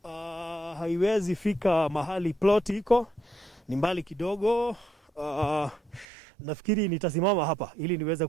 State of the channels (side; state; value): left; drops out; at 6.1 s